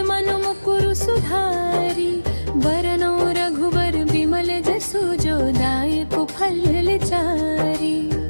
मन मुकुरु सुधारी। बरनौ रघुबर बिमल जसु, जो दायक फल चारी।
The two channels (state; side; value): inverted; both; correlation -1.00